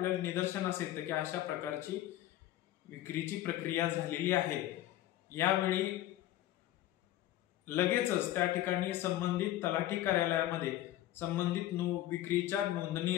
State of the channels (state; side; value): quieter; right; 14.2 dB